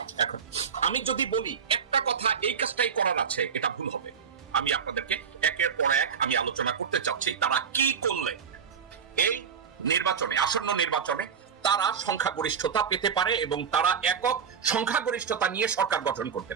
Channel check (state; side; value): quieter; left; 6.9 dB